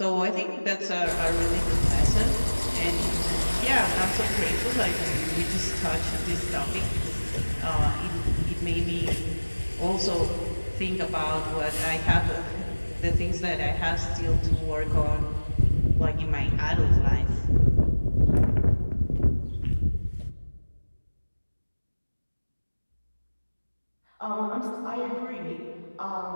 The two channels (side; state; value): both; inverted; correlation -1.00